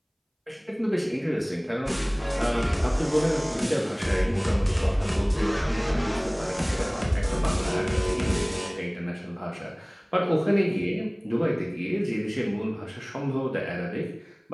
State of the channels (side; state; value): both; identical; correlation 1.00